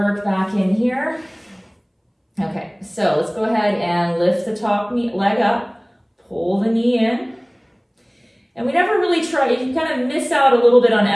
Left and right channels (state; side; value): identical; both; correlation 1.00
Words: back in here. Okay, so let's go ahead and lift the top leg up, pull the knee in. And we never really try, you kind of miss out a little bit on